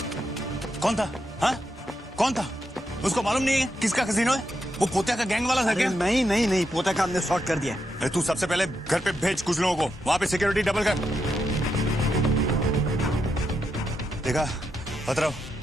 कौन था? हाँ कौन था? उसको मालूम नहीं है किसका कसीनो है? वो पोता का गैंग वाला था क्या? नहीं पोता का हमने सॉर्ट कर दिया। तू सबसे पहले घर पे भेज कुछ लोगों को, वहां पे सिक्योरिटी डबल कर। देखा पतराव,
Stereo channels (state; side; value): normal; both; correlation 0.83